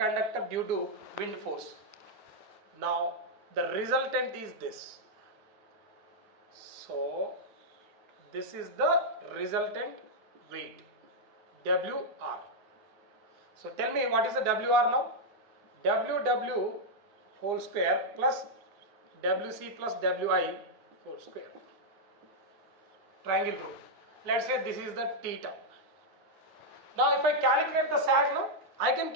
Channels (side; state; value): left; late; 9.8 ms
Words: due to wind force. Now the resultant is this. So this is the resultant weight, WR. So tell me, what is the WR now? WW whole square plus WC plus WI whole square. Triangle rule. Let's say this is the theta. Now if I calculate the sag now, I can